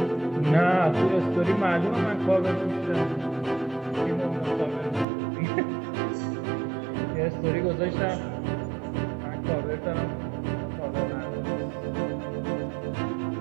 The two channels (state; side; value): drops out; left; at 5.1 s